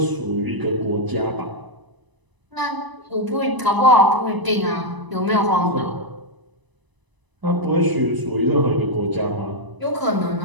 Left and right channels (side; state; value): left; late; 1.0 ms